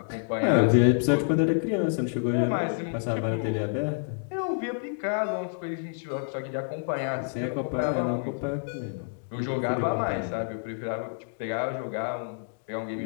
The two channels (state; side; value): silent; right; digital silence